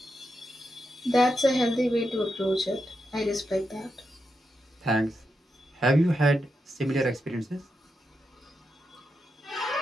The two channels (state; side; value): normal; both; correlation 0.86